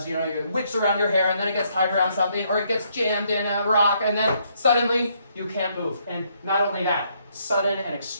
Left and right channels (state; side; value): inverted; both; correlation -0.71